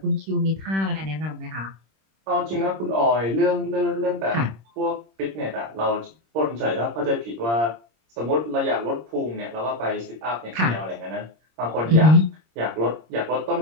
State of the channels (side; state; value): left; late; 26 ms